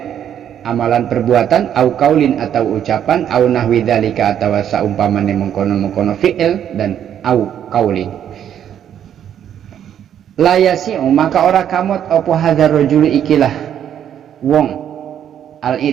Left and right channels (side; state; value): left; quieter; 9.7 dB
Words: amalan perbuatan au kaulin atau ucapan au nahwi dzalika atau saumpamane mengkono-mengkono fi'il dan au kaulin la yasi'u maka ora kamot apa hadzal rajul ikilah wong al